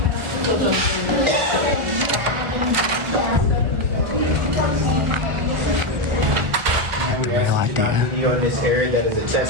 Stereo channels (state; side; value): late; left; 1.4 ms